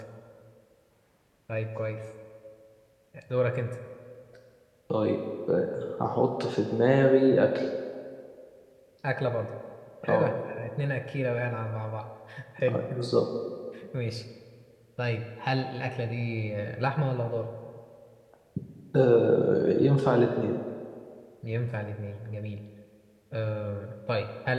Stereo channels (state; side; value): identical; both; correlation 1.00